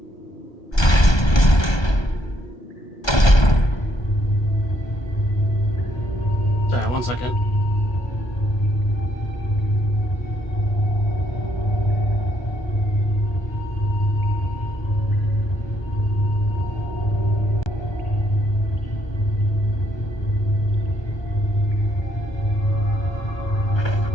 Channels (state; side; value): late; right; 1.2 ms